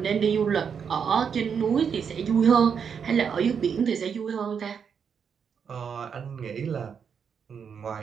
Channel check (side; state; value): left; quieter; 6.9 dB